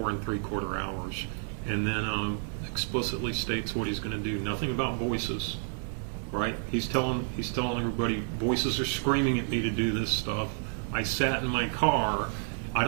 3/4 hours. And then explicitly states what he's going to do. Nothing about voices, right? He's telling everybody, voices are screaming at me to do this stuff. I sat in my car, I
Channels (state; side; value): silent; left; 57 dB below the other